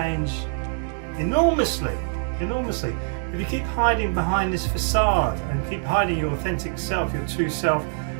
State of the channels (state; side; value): silent; left; digital silence